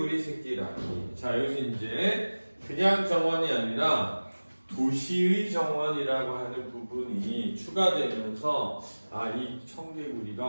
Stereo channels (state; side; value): inverted; both; correlation -1.00